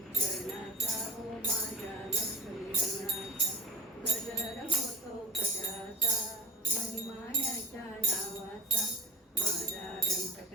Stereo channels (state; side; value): normal; both; correlation 0.32